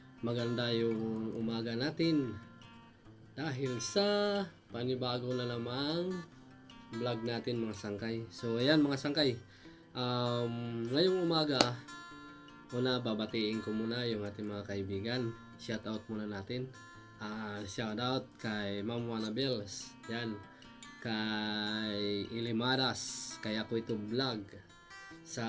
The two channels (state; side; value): identical; both; correlation 1.00